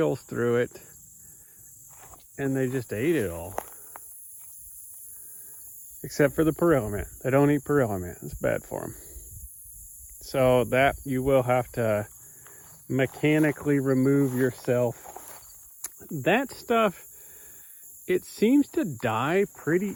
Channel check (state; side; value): identical; both; correlation 1.00